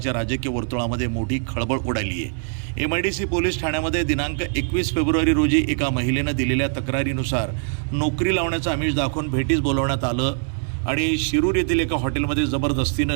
राजकीय वर्तुळामध्ये मोठी खळबळ उडाली आहे। MIDC पोलीस ठाण्यामध्ये दिनांक 21 फेब्रुवारी रोजी एका महिलेनं दिलेल्या तक्रारीनुसार नोकरी लावण्याचं आमिष दाखवून भेटीस बोलवण्यात आलं आणि शिरूर येथील एका हॉटेलमध्ये जबरदस्तीनं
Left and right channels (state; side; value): silent; left; digital silence